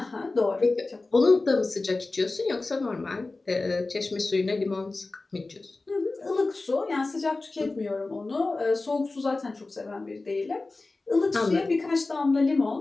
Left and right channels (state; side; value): quieter; right; 3.4 dB